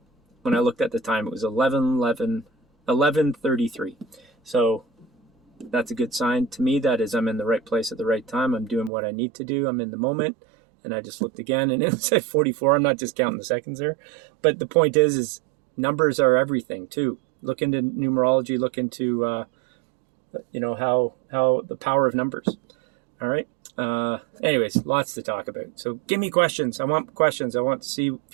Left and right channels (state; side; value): drops out; left; at 8.9 s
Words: when I looked at the time, it was 11:33. So that's a good sign to me. That is, I'm in the right place at the right time. I'm doing what I need to do. I'm in the moment. And I just looked again, and it said 44. I'm not just counting the seconds there. But the point is numbers are everything, too. Look into numerology. Look into, how the power of numbers. All right. Anyways, lots to talk about. So give me questions. I want questions. I want to see